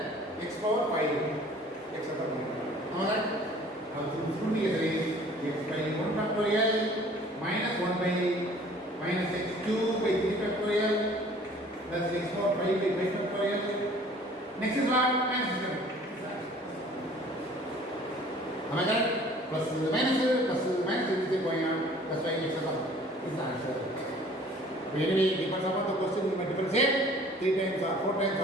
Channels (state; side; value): normal; both; correlation 0.51